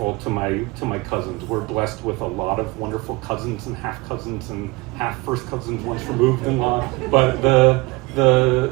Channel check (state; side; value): quieter; left; 24.3 dB